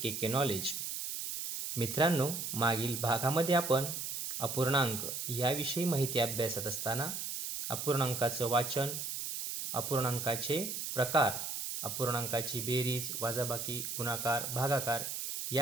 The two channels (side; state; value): right; noise; hiss, 4 dB below the sound